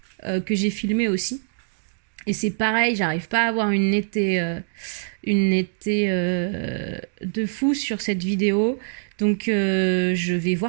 que j'ai filmée aussi. Et c'est pareil, j'arrive pas à avoir une netteté de fou sur cette vidéo. Donc je vais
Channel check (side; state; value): left; silent; digital silence